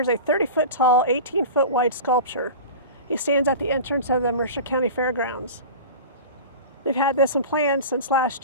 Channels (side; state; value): both; inverted; correlation -0.33